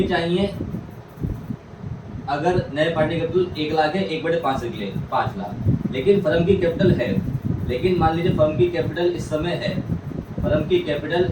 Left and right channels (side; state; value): both; identical; correlation 1.00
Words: चाहिए, अगर नए पार्टनर की कैपिटल 1 लाख है 1/5 के लिए 5 लाख, लेकिन फर्म की कैपिटल है, लेकिन मान लीजिए फर्म की कैपिटल इस समय है, फर्म की कैपिटल